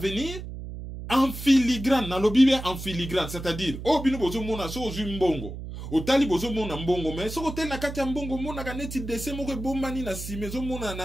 en filigrane, na lobi bien en filigrane, c'est-à-dire, oh bino bozo mona so ozu mbongo, o tali bozo mona mbongo, mais so kote na kati ya mbongo mona ka neti dese moko bombani na sime, zo mona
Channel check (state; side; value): noise; right; hum, 9 dB below the sound